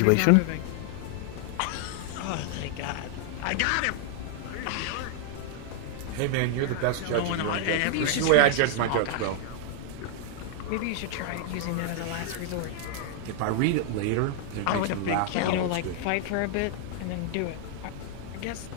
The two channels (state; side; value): different; both; correlation 0.00